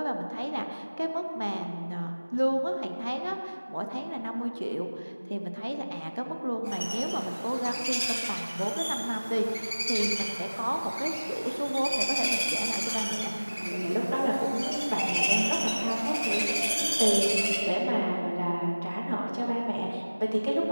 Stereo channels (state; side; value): inverted; both; correlation -1.00